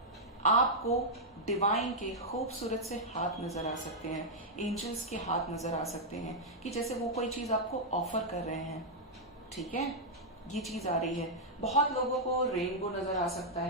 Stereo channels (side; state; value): both; normal; correlation -0.05